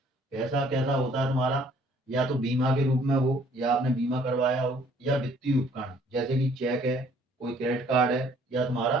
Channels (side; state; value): both; normal; correlation 0.59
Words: पैसा कैसा होता है तुम्हारा? या तो बीमा के रूप में हो, या आपने बीमा करवाया हो, या वित्तीय उपकरण जैसे कि चेक है, कोई क्रेडिट कार्ड है, या तुम्हारा